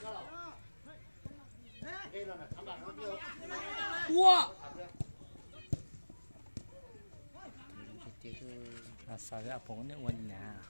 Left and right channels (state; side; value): inverted; both; correlation -1.00